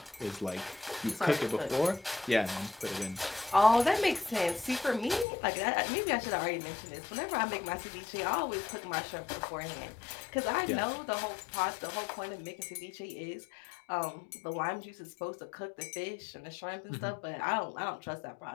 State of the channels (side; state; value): right; drops out; at 5.2 s